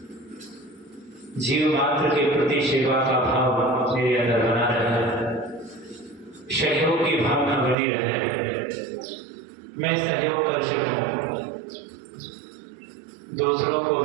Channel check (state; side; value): drops out; left; at 7.8 s